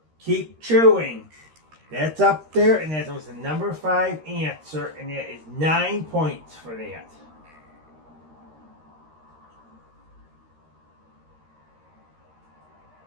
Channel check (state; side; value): late; left; 13 ms